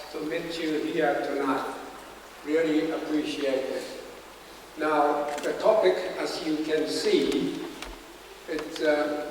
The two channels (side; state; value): both; identical; correlation 1.00